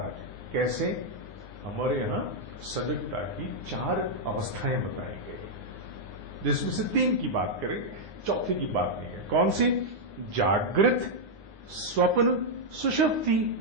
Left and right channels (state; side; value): late; left; 9.7 ms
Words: कैसे? हमारे यहां सजगता की 4 अवस्थाएं बताई गई, जिसमें से 3 की बात करें, चौथी की बात नहीं है। कौन सी? जागृत, स्वप्न, सुषुप्ति।